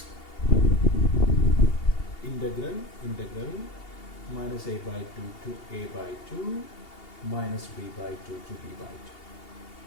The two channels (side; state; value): right; late; 2.8 ms